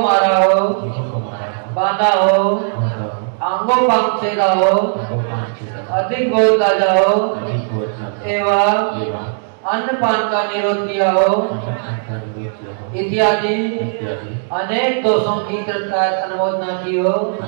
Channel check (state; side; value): silent; left; digital silence